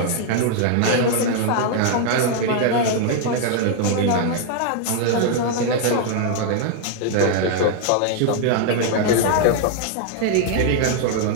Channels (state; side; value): different; both; correlation 0.00